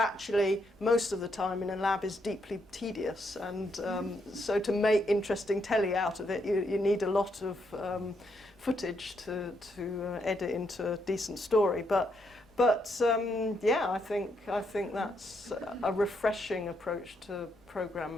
most of the time in a lab is deeply tedious, and so to make interesting telly out of it, you need a lot of footage to edit into a decent story. But yeah, I think that's a refreshing approach to program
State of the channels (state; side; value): normal; both; correlation 0.77